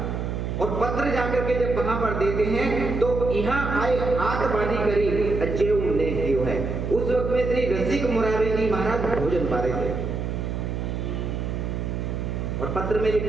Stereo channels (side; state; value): right; noise; hum, 3 dB below the sound